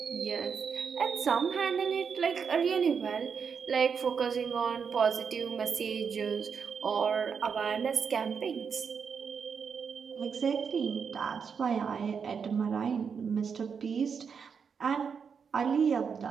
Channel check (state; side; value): quieter; left; 6.3 dB